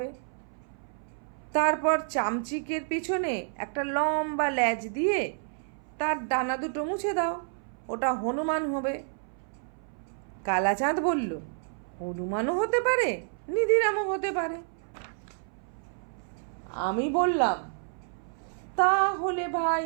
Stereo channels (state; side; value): silent; left; 58 dB below the other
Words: তারপর চামচিকের পিছনে একটা লম্বা ল্যাজ দিয়ে তার ডানা দুটো মুছে দাও, ওটা হনুমান হবে। কালাচাঁদ বলল, হনুমানও হতে পারে, নিধিরামও হতে পারে। আমি বললাম, তাহলে ভাই